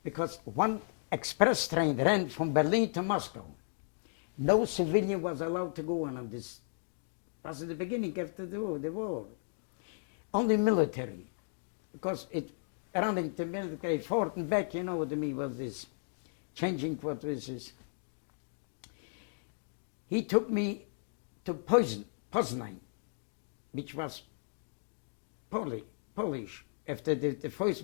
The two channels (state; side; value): silent; right; digital silence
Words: Because one express train ran from Berlin to Moscow. No civilian was allowed to go on this. Was at the beginning after the war. Only military. Because it running to military fort and back, you know what I mean, was this. Changing what was this. He took me to Poznan, which was Polish after the